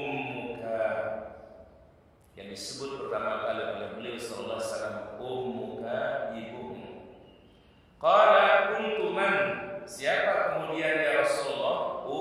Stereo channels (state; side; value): identical; both; correlation 1.00